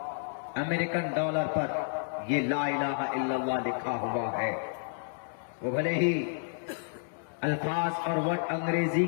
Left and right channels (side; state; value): right; silent; digital silence